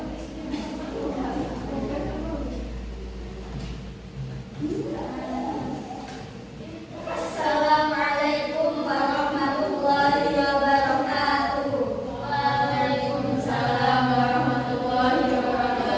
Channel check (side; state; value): both; identical; correlation 1.00